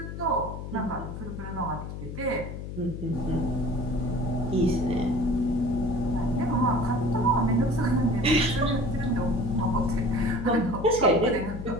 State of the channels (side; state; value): left; noise; hum, 8 dB below the sound